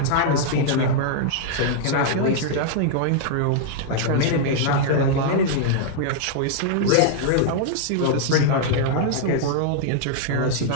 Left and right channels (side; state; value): both; different; correlation -0.01